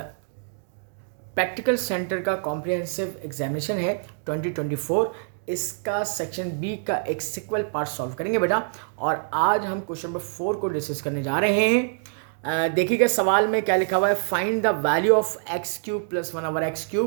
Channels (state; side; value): silent; left; digital silence